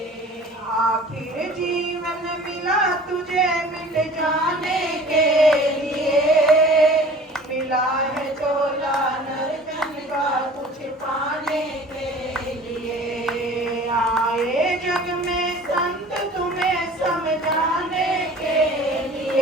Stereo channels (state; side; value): normal; both; correlation 0.45